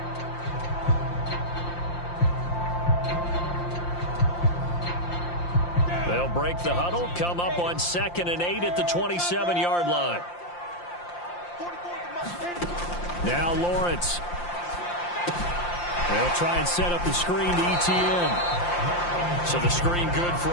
They'll break the huddle, come up on 2nd and 8 at the 27-yard line. Now Lawrence. They'll try and set up the screen to ETN. So the screen good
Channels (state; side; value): late; right; 5.7 ms